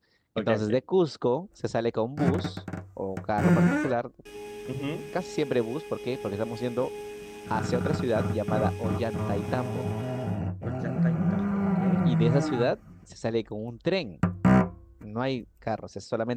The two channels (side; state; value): both; identical; correlation 1.00